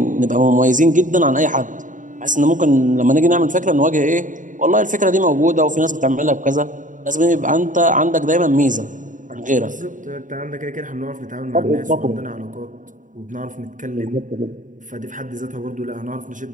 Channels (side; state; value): left; late; 0.37 ms